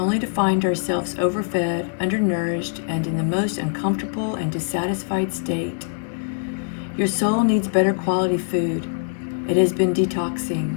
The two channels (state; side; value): silent; right; 64 dB below the other